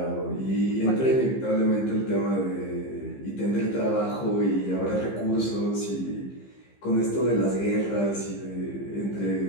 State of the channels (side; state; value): right; late; 15 ms